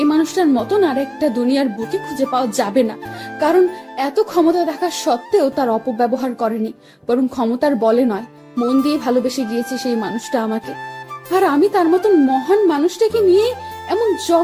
মানুষটার মতন আর একটা দুনিয়ার বুকে খুঁজে পাওয়া যাবে না, কারণ এত ক্ষমতা থাকা সত্ত্বেও তার অপব্যবহার করেনি, বরং ক্ষমতার বলে নয়, মন দিয়ে ভালোবেসে গিয়েছে সেই মানুষটা আমাকে। আর আমি তার মতন মহান মানুষটাকে নিয়ে এমন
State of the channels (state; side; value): identical; both; correlation 1.00